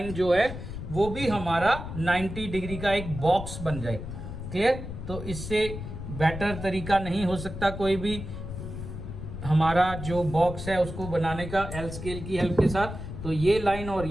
जो है वो भी हमारा 90 डिग्री का एक बॉक्स बन जाए। क्लियर? तो इससे बेटर तरीका नहीं हो सकता कोई भी हमारा जो बॉक्स है उसको बनाने का एल स्केल की हेल्प के साथ। तो ये लाइन और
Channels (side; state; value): left; noise; rumble, 8 dB below the sound